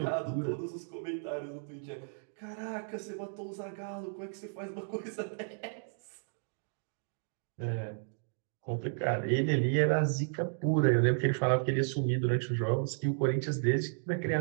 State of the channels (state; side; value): silent; left; digital silence